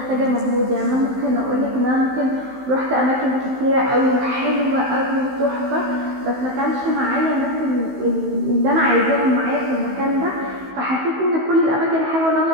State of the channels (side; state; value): left; late; 15 ms